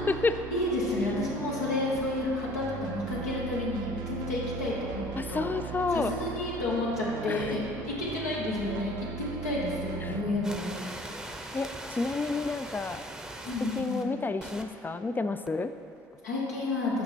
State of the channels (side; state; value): both; normal; correlation 0.53